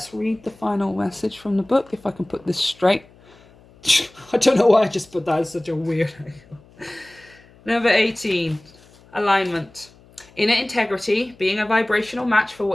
read the final message from the book, if I can put this straight. I don't know why I just put that as such a weird angle. Number 18. Alignment. Inner integrity, being a vibrational match for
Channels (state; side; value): noise; left; hum, 27 dB below the sound